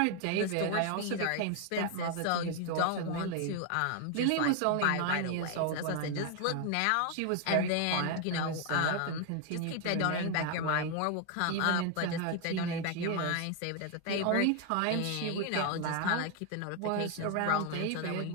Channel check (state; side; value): different; both; correlation 0.01